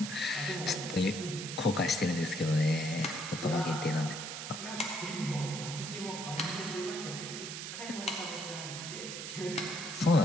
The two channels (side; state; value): right; noise; hiss, 7 dB below the sound